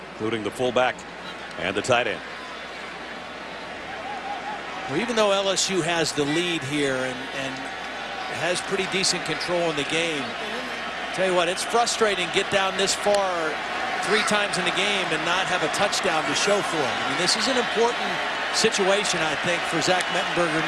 including the fullback and the tight end. Well, even though LSU has the lead here and has pretty decent control in the game, tell you what, it's frustrating to get down this far 3 times in the game and not have a touchdown to show for it. I mean, this is an important situation, I think, for Zach Mettenberger in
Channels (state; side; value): identical; both; correlation 1.00